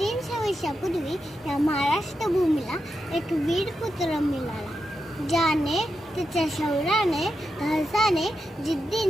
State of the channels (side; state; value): both; normal; correlation 0.87